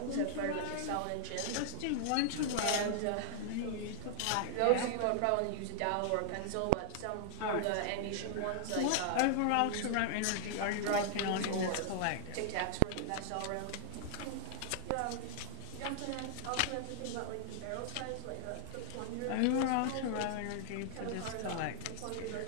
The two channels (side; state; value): both; different; correlation 0.00